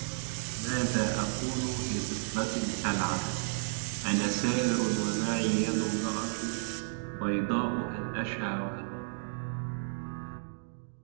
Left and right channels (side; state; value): left; silent; digital silence